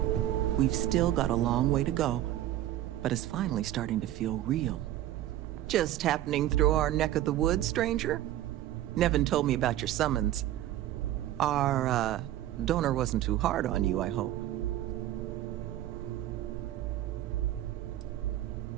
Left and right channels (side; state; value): left; quieter; 13.4 dB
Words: We've still got a long way to go, but it's finally starting to feel real. Just happening through our neck of the woods, stranger? Nevin told me about your summons. Our, donor wasn't too hard on you, I hope.